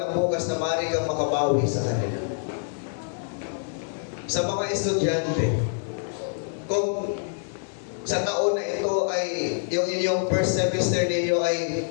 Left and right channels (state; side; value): silent; right; 61 dB below the other